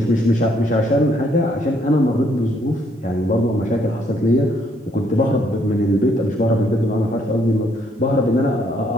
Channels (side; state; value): both; normal; correlation 0.69